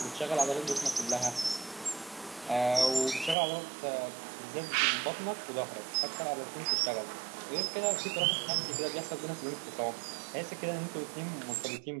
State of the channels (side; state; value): left; drops out; at 3.4 s